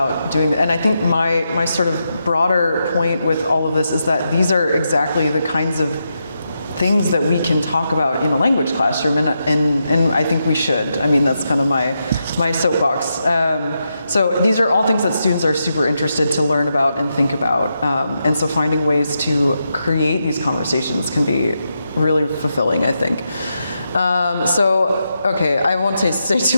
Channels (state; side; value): inverted; both; correlation -0.85